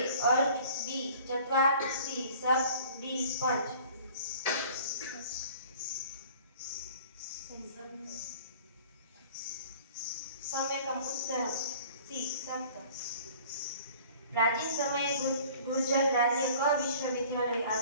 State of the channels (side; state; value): both; inverted; correlation -0.49